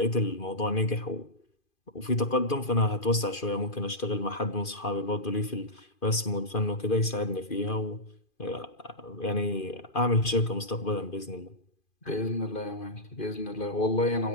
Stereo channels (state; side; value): late; right; 2.5 ms